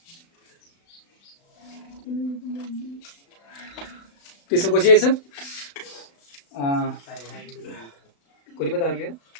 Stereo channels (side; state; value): right; late; 35 ms